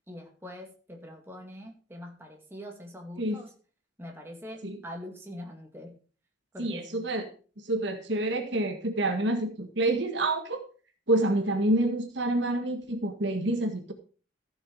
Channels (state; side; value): normal; both; correlation 0.33